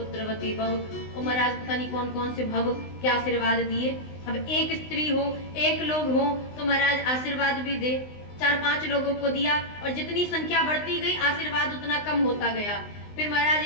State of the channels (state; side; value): late; right; 19 ms